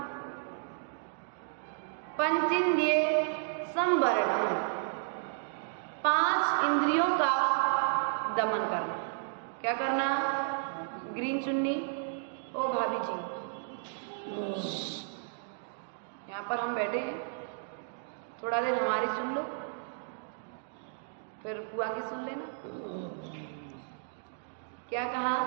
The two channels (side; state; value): left; silent; digital silence